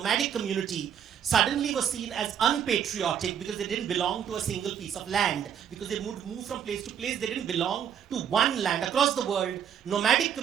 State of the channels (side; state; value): left; quieter; 8.7 dB